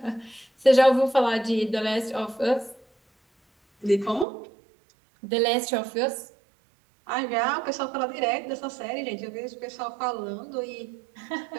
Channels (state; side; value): drops out; left; at 4.2 s